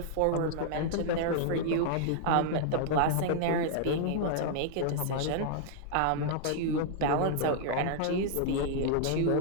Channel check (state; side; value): different; both; correlation -0.01